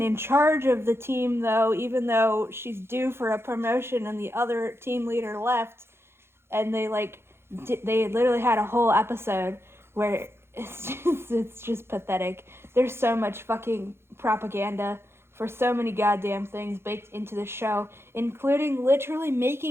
in charge of the team, though, even though she's due for a promotion and the other team leader left. And they literally had a whole episode where it's just pathetic. There's so much fucking propaganda for so many goddamn things baked into the show, including literally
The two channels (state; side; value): late; left; 0.12 ms